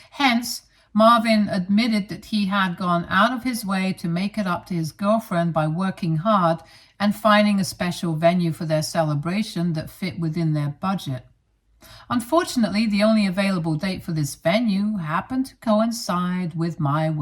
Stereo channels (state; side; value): identical; both; correlation 1.00